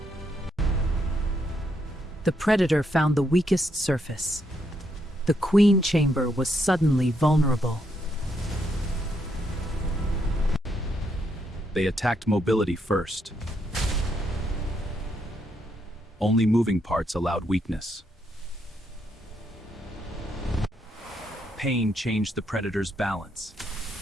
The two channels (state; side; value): normal; both; correlation 0.77